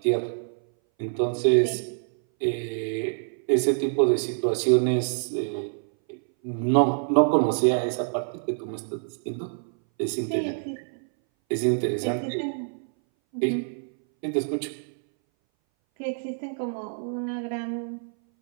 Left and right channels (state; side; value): silent; left; 59 dB below the other